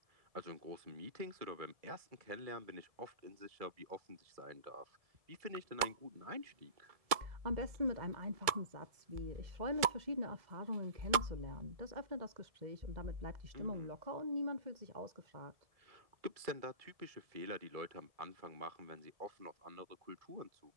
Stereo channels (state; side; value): late; left; 1.7 ms